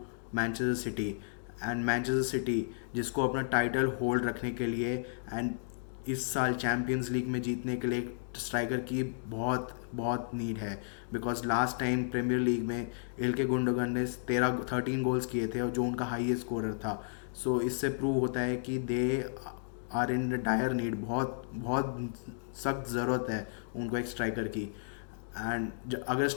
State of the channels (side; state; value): right; silent; digital silence